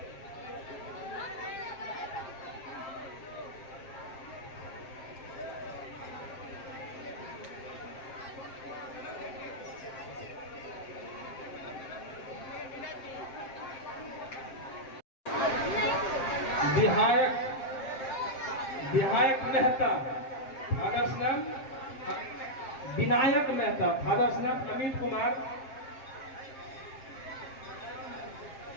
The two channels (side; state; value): right; late; 7.6 ms